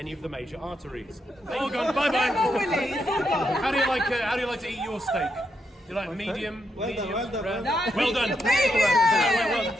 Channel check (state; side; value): normal; both; correlation 0.81